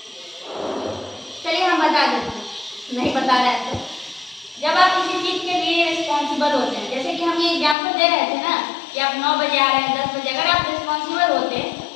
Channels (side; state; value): right; drops out; at 7.8 s